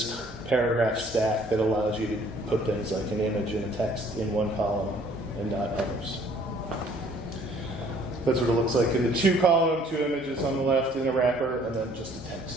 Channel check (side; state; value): both; normal; correlation 0.59